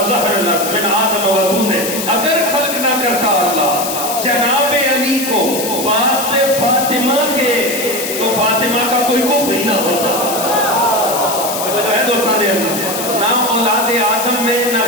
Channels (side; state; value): left; noise; hiss, 5 dB below the sound